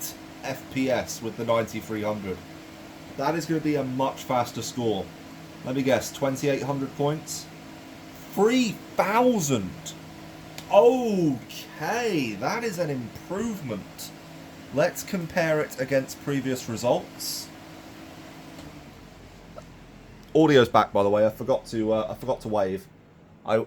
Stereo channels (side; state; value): both; identical; correlation 1.00